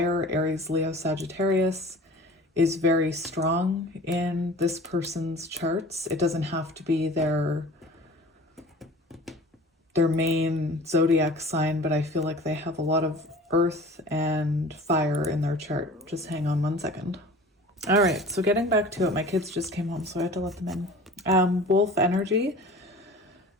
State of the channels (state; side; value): normal; both; correlation 0.42